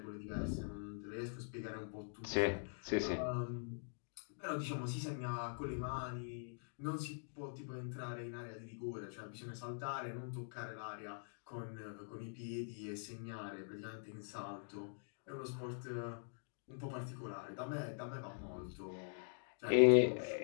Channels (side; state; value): right; silent; digital silence